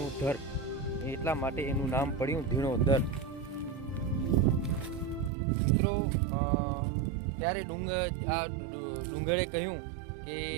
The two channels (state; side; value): drops out; left; at 5.3 s